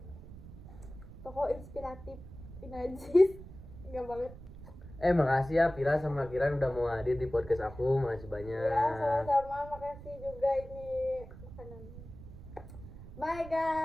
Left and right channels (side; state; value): right; noise; rumble, 15 dB below the sound